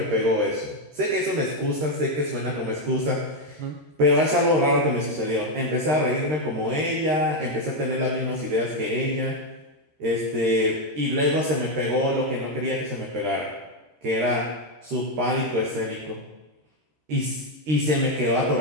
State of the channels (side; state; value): left; late; 13 ms